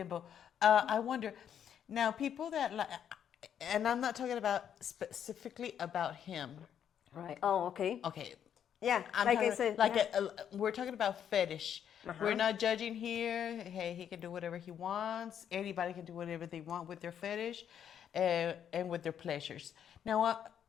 I wonder, now people that like, and I'm not talking about specifically about him. Right. Oh, okay. Okay. Yeah, I'm like talking, I said. like yeah. we're talking about fetish. We're not judging here. Hey, he can do whatever he wants. Anybody can do whatever they want with their fetish, and with their pleasures. Now,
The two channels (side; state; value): right; quieter; 9.0 dB